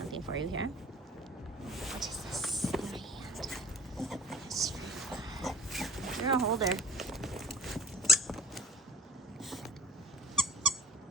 for you here. What is this in my hand? Yes. You're a holder.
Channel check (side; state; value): both; normal; correlation 0.50